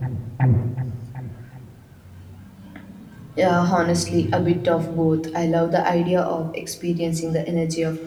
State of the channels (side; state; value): both; identical; correlation 1.00